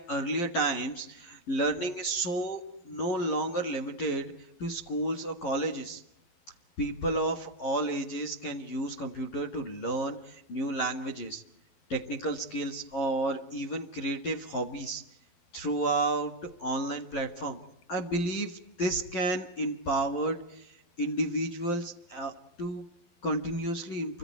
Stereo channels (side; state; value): right; late; 12 ms